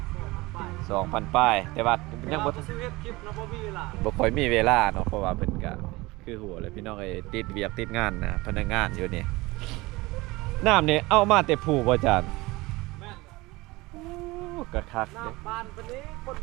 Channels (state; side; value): quieter; left; 21.6 dB